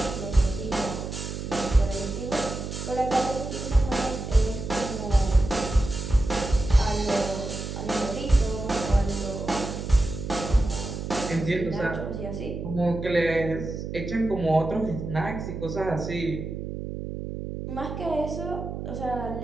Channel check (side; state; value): right; noise; hum, 6 dB below the sound